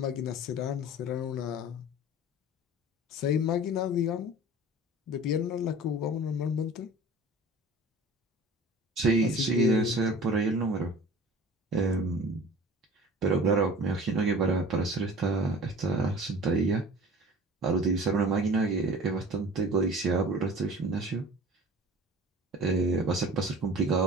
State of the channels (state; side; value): normal; both; correlation 0.41